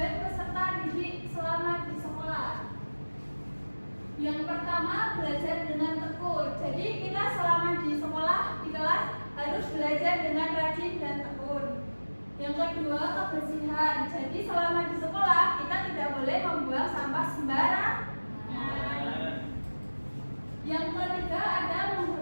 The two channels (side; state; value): both; inverted; correlation -1.00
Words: peserta didik selama di sekolah. Yang pertama, belajar dengan tekun. Jadi kita selama di sekolah, di kelas harus belajar dengan rajin dan tekun. Yang kedua, kebersihan. Jadi selama di sekolah kita tidak boleh membuang sampah sembarangan. Yang ketiga ada